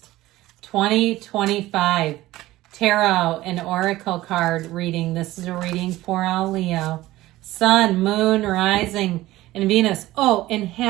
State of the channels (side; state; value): left; quieter; 16.8 dB